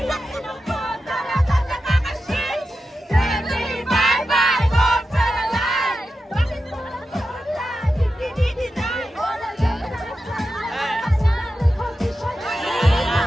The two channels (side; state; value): both; normal; correlation 0.90